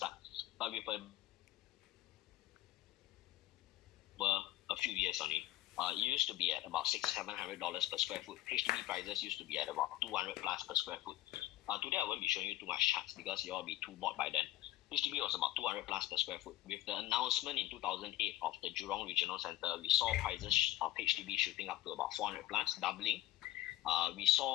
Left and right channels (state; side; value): quieter; right; 15.5 dB